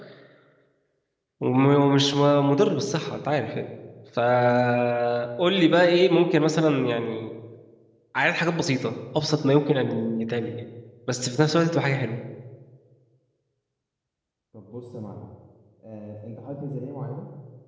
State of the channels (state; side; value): identical; both; correlation 1.00